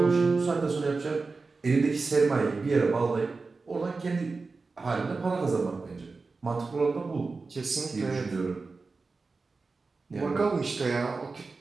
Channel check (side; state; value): left; quieter; 4.1 dB